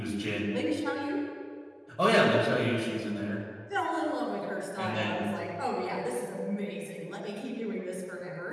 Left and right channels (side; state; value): both; identical; correlation 1.00